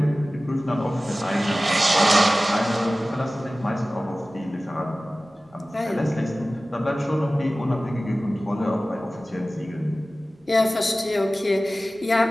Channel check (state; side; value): normal; both; correlation 0.97